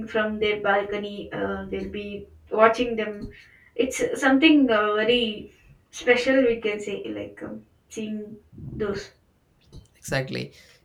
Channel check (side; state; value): both; identical; correlation 1.00